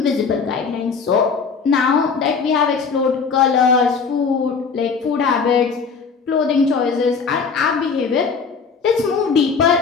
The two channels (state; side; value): quieter; right; 5.4 dB